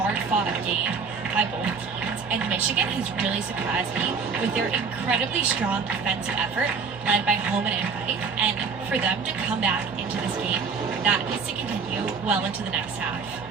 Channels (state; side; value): quieter; left; 5.4 dB